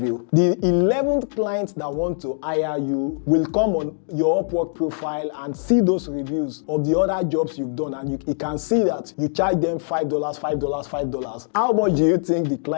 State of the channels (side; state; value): right; silent; digital silence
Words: The 11th client that want to hire you will come on your Upwork profile and see those reviews of the other jobs you've done, and you can see that you charge them $5, $5. How much do you think the